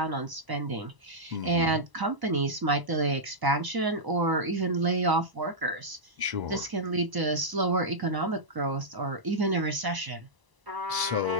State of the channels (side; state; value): left; late; 1.0 ms